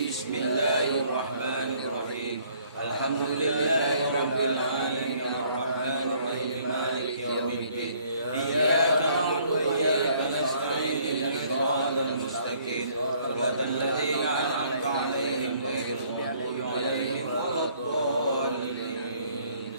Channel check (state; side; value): inverted; both; correlation -0.62